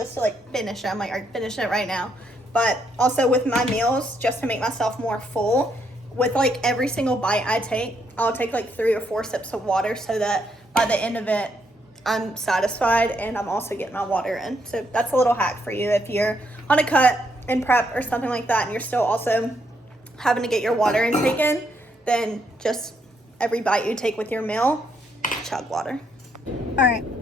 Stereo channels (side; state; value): both; normal; correlation 0.75